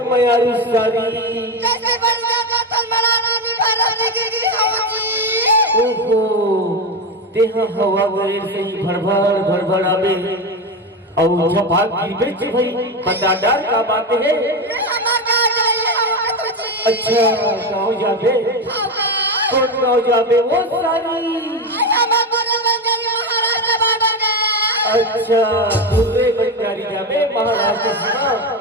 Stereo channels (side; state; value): both; normal; correlation 0.16